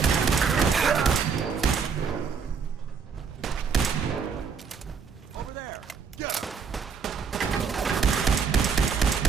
Over there! Get him!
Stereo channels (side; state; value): left; quieter; 6.0 dB